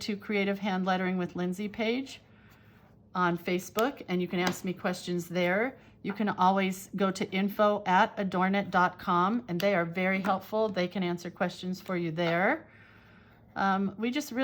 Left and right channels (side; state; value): both; identical; correlation 1.00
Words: Creative Hand Lettering with Lindsay page on Facebook, and you can ask me questions there. You can always go to info@adornit.com, and they are very helpful. They can answer questions for you there. We just